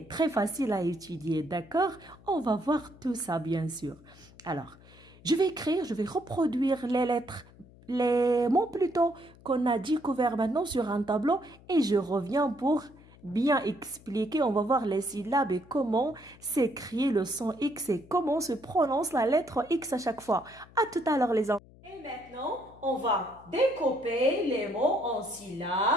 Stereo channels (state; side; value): noise; left; hum, 24 dB below the sound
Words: très facile à étudier, d'accord? On va voir tout ça, bien sûr. Alors, je vais reproduire les lettres, les mots plutôt qu'on a découverts maintenant sur un tableau et je reviens pour bien expliquer. On va voir les syllabes et comment s'écrit le son X et comment se prononce la lettre X à chaque fois. À tout à l'heure, les enfants. Et maintenant, on va découper les mots en